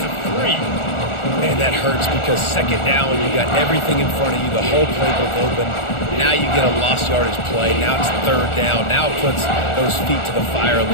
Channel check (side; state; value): right; late; 1.4 ms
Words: of 3. Man, that hurts because 2nd down, you got everything in front of you, the whole playbook open. Now you get a lost yardage play. Now it's 3rd down. Now it puts those feet to the fire a